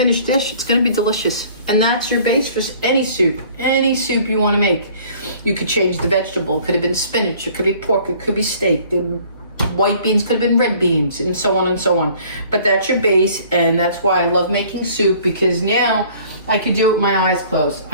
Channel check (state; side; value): inverted; both; correlation -0.53